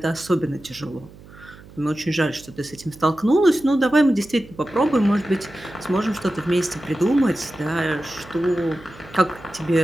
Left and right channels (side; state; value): right; noise; hum, 20 dB below the sound